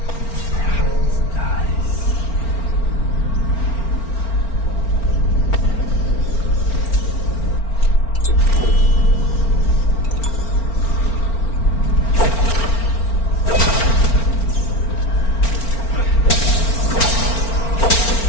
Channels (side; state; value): right; late; 4.4 ms